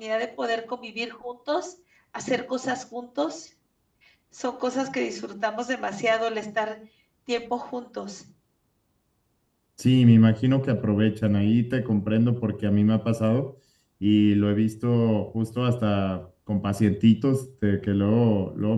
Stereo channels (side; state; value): both; identical; correlation 1.00